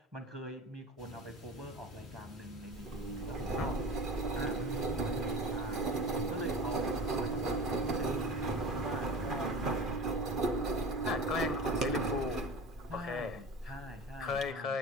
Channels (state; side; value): normal; both; correlation 0.35